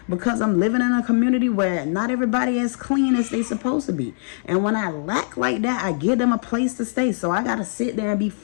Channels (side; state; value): right; silent; 64 dB below the other